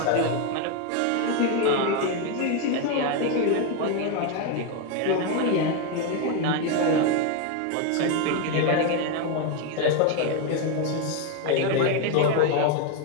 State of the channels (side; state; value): both; different; correlation 0.02